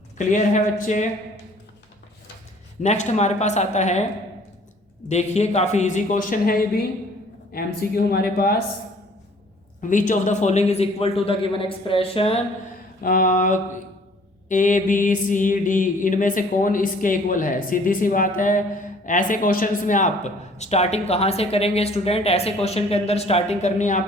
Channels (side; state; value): both; normal; correlation 0.55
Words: क्लियर है बच्चे। नेक्स्ट हमारे पास आता है, देखिए काफ़ी इजी क्वेश्चन है ये भी, एमसीक्यू हमारे पास, which of the following is equal to the given expression A B C D, इनमें से कौन इसके इक्वल है, सीधी सी बात है। ऐसे क्वेश्चंस में आप स्टार्टिंग कहाँ से करेंगे स्टूडेंट, ऐसे क्वेश्चन के अंदर स्टार्टिंग करनी है